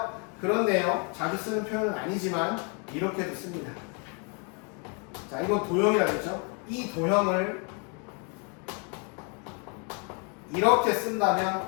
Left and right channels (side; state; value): right; quieter; 36.2 dB